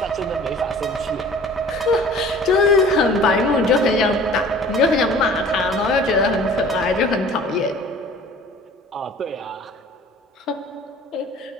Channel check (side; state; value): both; normal; correlation 0.47